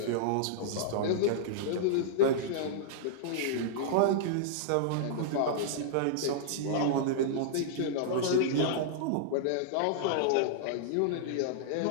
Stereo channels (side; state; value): both; different; correlation -0.02